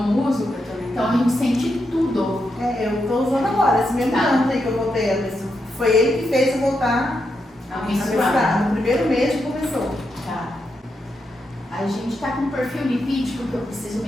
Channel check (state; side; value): normal; both; correlation 0.84